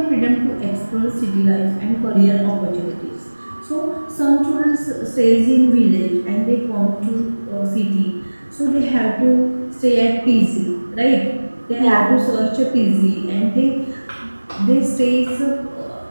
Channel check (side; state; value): both; inverted; correlation -1.00